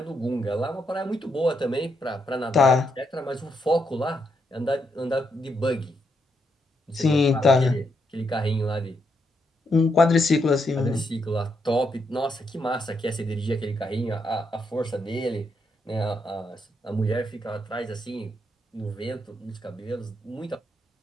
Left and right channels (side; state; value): both; normal; correlation 0.79